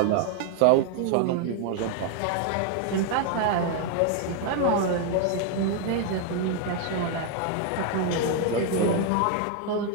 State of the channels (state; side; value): different; both; correlation 0.01